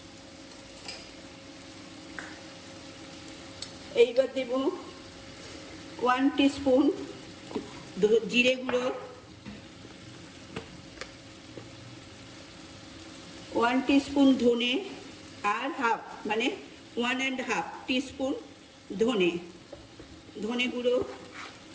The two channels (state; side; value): identical; both; correlation 1.00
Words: এইবার দেব 1 টিস্পুন জিরে গুঁড়ো, 1 টিস্পুন ধনে, আর হাফ মানে 1.5 টিস্পুন ধনে গুঁড়ো,